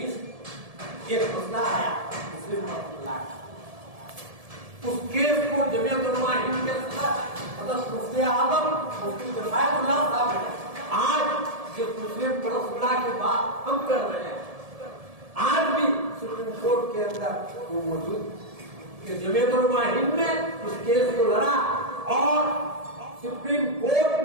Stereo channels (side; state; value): left; late; 1.7 ms